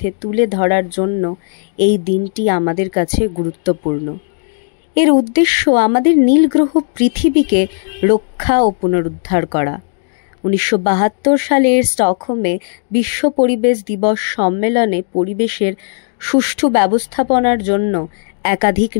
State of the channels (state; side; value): silent; right; digital silence